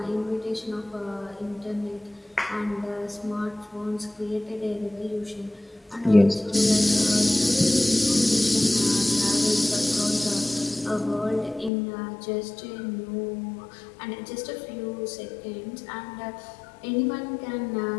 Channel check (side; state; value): right; drops out; at 11.7 s